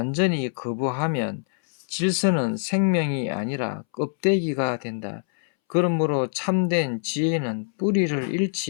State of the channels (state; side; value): silent; right; 62 dB below the other